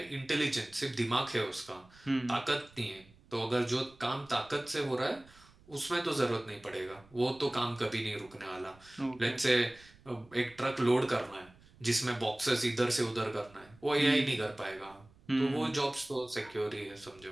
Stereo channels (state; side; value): noise; right; rumble, 26 dB below the sound